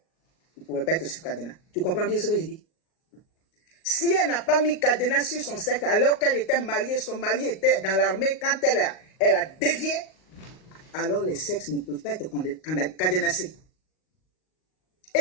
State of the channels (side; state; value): right; late; 38 ms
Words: il ne pouvait pas être sur cadenas. Tu comprends bien ce que je dis? Si elle n'a pas mis cadenas sur son sexe alors qu'elle était mariée, son mari était dans l'armée, quand elle a dévié, alors les sexes ne peuvent pas être cadenassés.